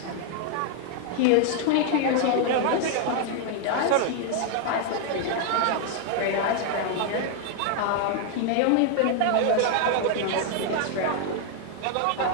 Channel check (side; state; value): both; different; correlation 0.00